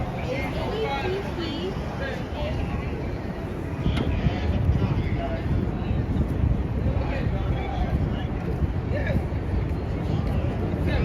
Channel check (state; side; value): identical; both; correlation 1.00